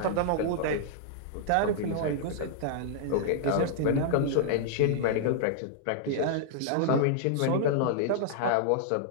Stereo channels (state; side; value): different; both; correlation -0.01